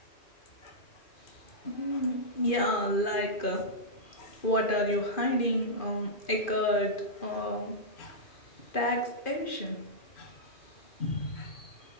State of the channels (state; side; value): late; right; 2.5 ms